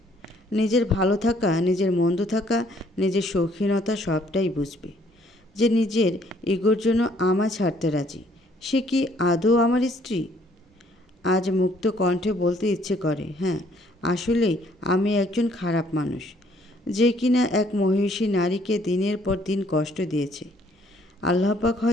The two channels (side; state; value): both; normal; correlation 0.63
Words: নিজের ভালো থাকা, নিজের মন্দ থাকা, নিজের শৌখিনতা সবটাই বুঝবে, যে নিজের ইগোর জন্য আমায় ছাড়তে রাজি। সে কি আদৌ আমার স্ত্রী? আজ মুক্ত কণ্ঠে বলতে ইচ্ছে করে, হ্যাঁ, আসলেই আমি একজন খারাপ মানুষ, যে কিনা এক মহিষী নারীকে দিনের পর দিন কষ্ট দিয়েছে। আল্লাহ পাক